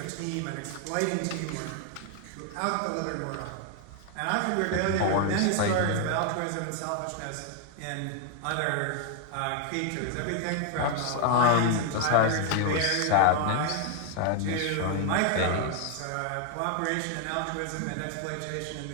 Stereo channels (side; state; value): both; different; correlation 0.00